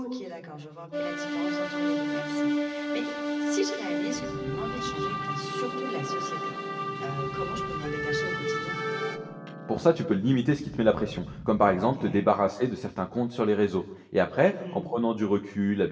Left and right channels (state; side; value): identical; both; correlation 1.00